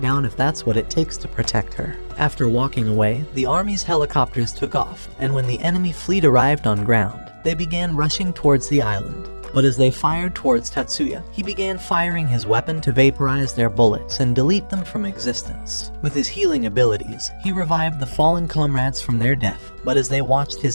down if that's what it takes to protect her. After walking away, the army's helicopters took off, and when the enemy fleet arrived on ground, they began rushing towards the island. But as they fired towards Tatsuya, he began firing his weapon to vaporize their bullets and delete them from existence. With his healing abilities, he revived the fallen comrades from their death. But as they watched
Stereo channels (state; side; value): inverted; both; correlation -1.00